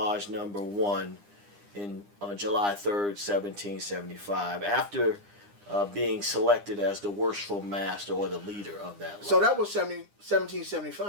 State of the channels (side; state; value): left; late; 9.9 ms